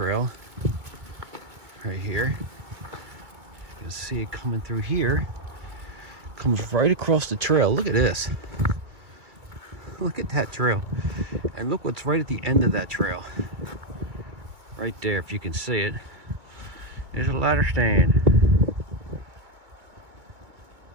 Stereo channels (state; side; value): late; left; 2.2 ms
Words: right here. You can see it coming through here. Comes right across the trail. Look at this. Look at that trail. And look what's right at the end of that trail. Right there, if you can see it. There's a ladder stand.